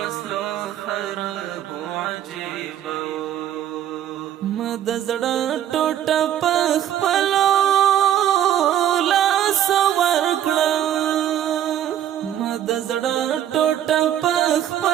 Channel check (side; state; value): left; quieter; 11.0 dB